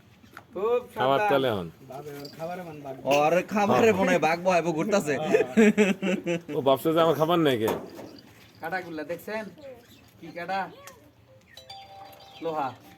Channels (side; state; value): both; identical; correlation 1.00